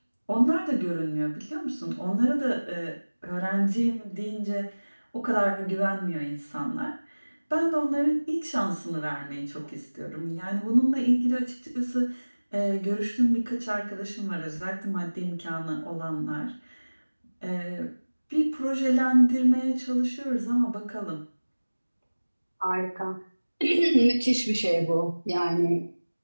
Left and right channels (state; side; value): inverted; both; correlation -1.00